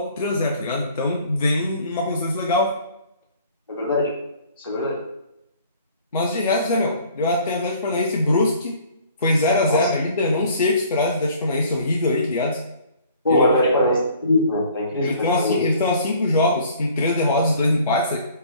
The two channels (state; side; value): inverted; both; correlation -0.54